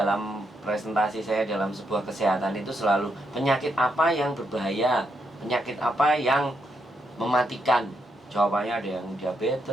presentasi saya dalam sebuah kesehatan itu selalu penyakit apa yang berbahaya, penyakit apa yang mematikan. Jawabannya ada yang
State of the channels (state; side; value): normal; both; correlation 0.79